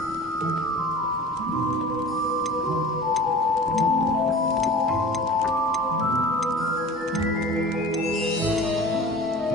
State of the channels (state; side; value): normal; both; correlation 0.40